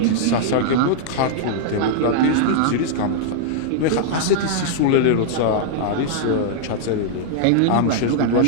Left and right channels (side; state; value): both; different; correlation -0.01